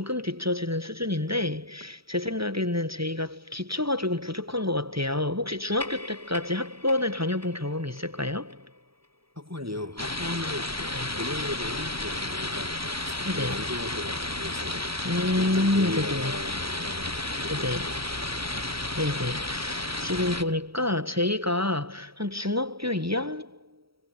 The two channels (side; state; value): left; late; 0.76 ms